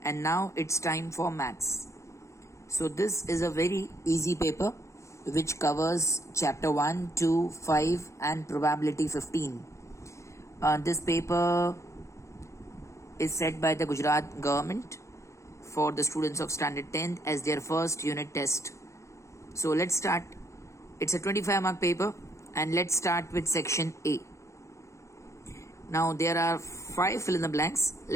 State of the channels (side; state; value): right; late; 0.14 ms